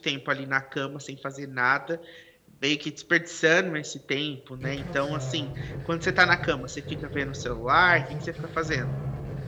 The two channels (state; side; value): identical; both; correlation 1.00